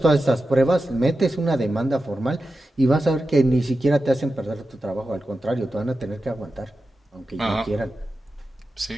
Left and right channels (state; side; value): normal; both; correlation 0.91